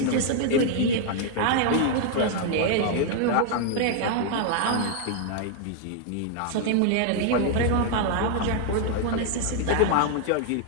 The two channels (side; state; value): both; different; correlation 0.00